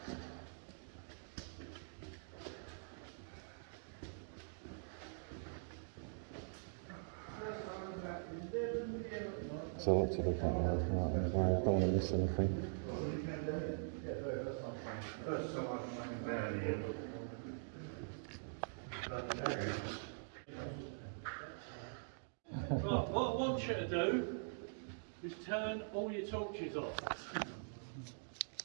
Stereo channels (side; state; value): left; silent; digital silence